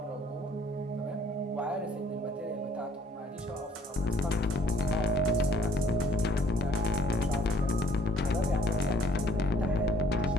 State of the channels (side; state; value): both; normal; correlation 0.60